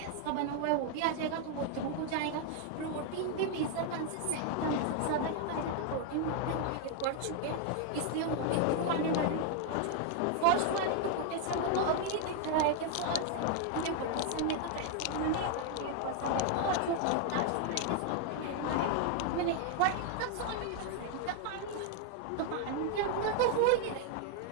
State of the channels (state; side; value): different; both; correlation 0.00